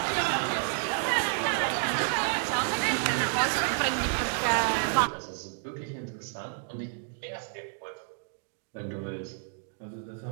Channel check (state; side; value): silent; left; digital silence